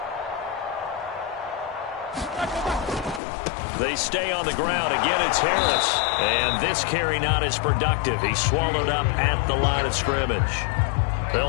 They stay on the ground. Again, it's Harris. And this carry not as productive. He's swallowed up at the line of scrimmage.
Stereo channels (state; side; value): drops out; right; at 3.2 s